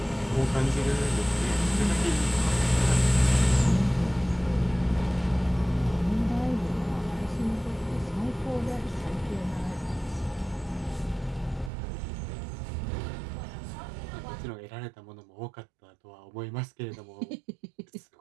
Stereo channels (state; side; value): drops out; left; at 11.7 s